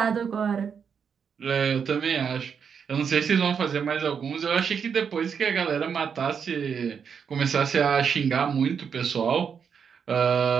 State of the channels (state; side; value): quieter; left; 6.8 dB